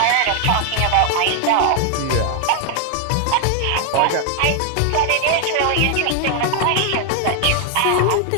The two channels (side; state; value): both; different; correlation 0.00